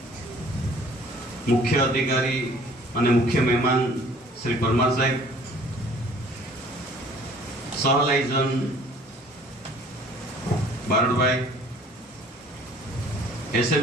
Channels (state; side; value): normal; both; correlation 0.54